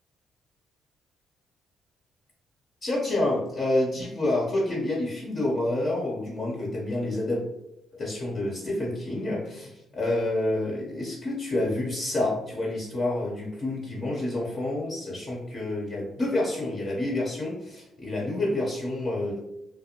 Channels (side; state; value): both; normal; correlation 0.83